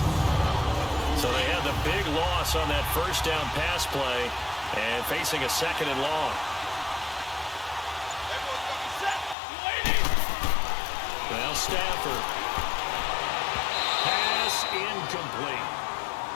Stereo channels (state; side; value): drops out; right; at 9.3 s